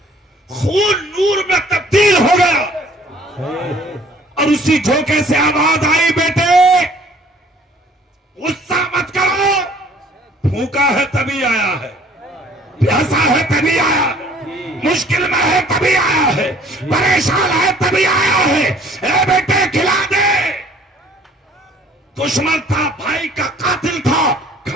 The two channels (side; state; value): both; normal; correlation 0.55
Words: خون نور میں تبدیل ہو گیا اور اسی جھونکے سے آواز آئی بیٹے غصہ مت کرو, بھوکا ہے تبھی آیا ہے، پیاسا ہے تبھی آیا ہے، مشکل میں ہے تبھی آیا ہے، پریشان ہے تبھی آیا ہے۔ اے بیٹے کھلا دے۔ دشمن تھا، بھائی کا قاتل تھا،